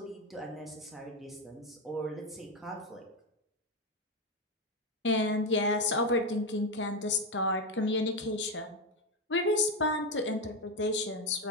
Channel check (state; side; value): normal; both; correlation 0.10